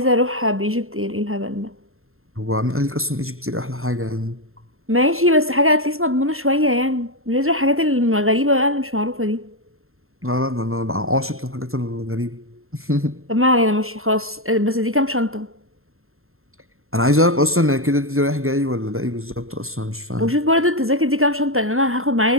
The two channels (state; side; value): late; left; 0.61 ms